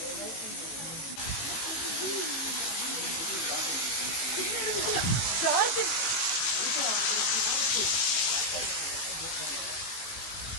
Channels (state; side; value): late; right; 18 ms